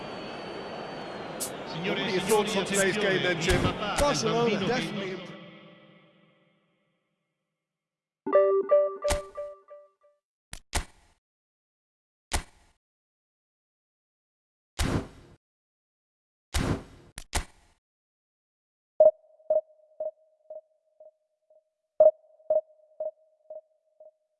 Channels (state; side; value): identical; both; correlation 1.00